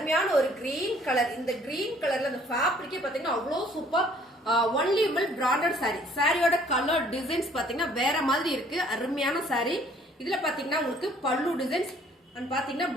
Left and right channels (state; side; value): normal; both; correlation 0.58